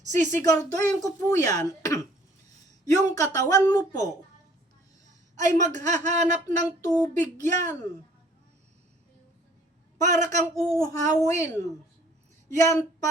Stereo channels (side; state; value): both; normal; correlation 0.57